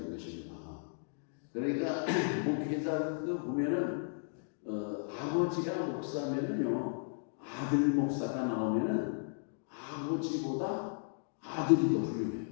것입니다. 그러니까 목회자도 보면은 아버지가 목사면은요 아들 목사가 나오면은 아버지보다 아들이 더 훌륭해요.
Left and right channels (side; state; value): right; silent; digital silence